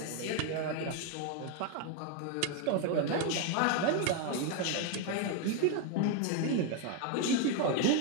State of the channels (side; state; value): both; different; correlation 0.01